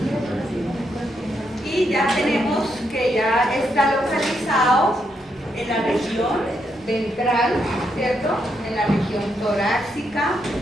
Y ya tenemos que ya está localizado en la región ventral, ¿cierto? En la región torácica,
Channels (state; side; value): normal; both; correlation 0.79